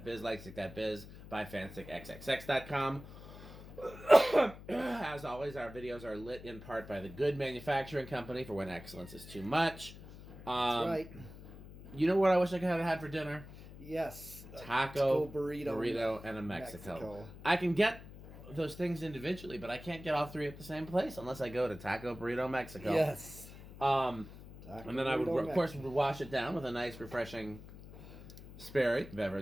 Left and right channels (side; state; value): left; noise; hum, 16 dB below the sound